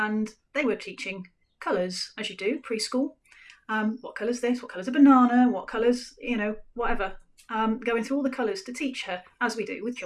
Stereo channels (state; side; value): identical; both; correlation 1.00